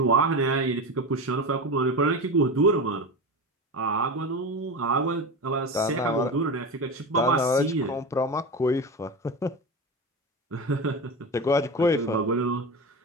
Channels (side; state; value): both; normal; correlation 0.24